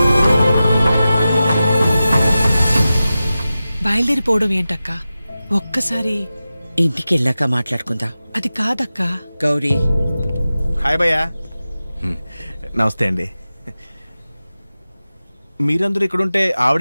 బయలుదేరిపోవడం ఏంటక్క? ఒక్కసారి ఇంటికి వెళ్ళాక మాట్లాడుకుందా. అది కాదక్క. గౌరీ, హాయ్ భయ్యా. నమస్తే అండి. మీరందరూ ఇక్కడుంటే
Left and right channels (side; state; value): both; inverted; correlation -0.94